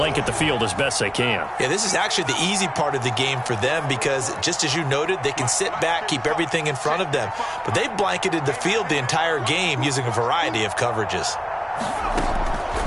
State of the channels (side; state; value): both; identical; correlation 1.00